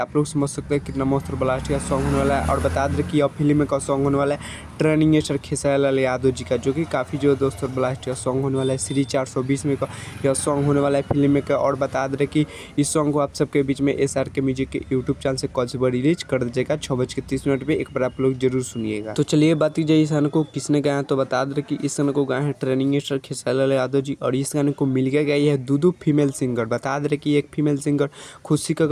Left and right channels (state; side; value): identical; both; correlation 1.00